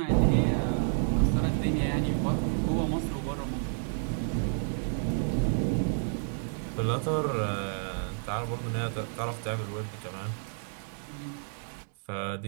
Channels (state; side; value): silent; left; digital silence